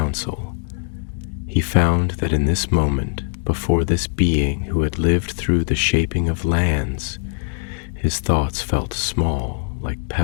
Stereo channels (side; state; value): right; silent; 65 dB below the other